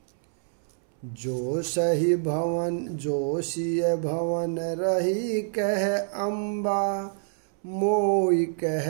जो सही भवन जो सिय भवन रही कह अम्बा, मोई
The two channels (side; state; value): left; silent; 61 dB below the other